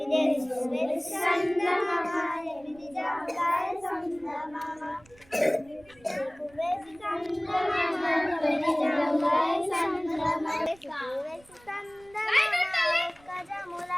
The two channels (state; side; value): noise; right; rumble, 27 dB below the sound